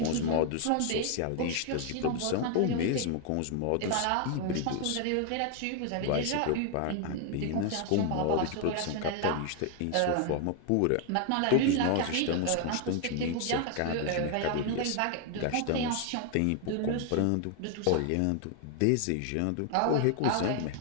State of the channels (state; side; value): different; both; correlation 0.00